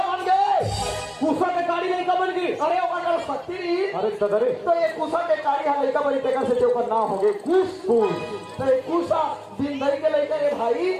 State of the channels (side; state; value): both; identical; correlation 1.00